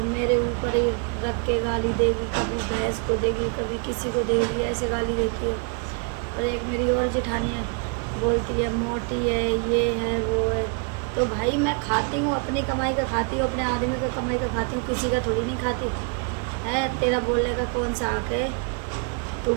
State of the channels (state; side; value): quieter; left; 37.6 dB